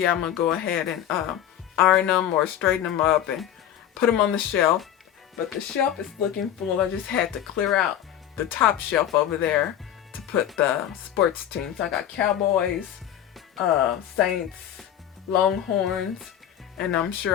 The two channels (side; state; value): right; quieter; 10.7 dB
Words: I'm gonna go ahead and iron them or straighten them up and put them on the shelf. But the shelf is looking full. I just had to clear out the top shelf over there to put the sports teams. I got Cowboys, Saints, Longhorns, and I'm